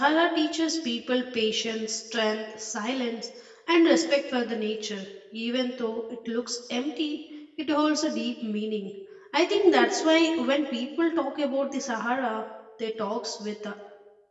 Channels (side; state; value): both; identical; correlation 1.00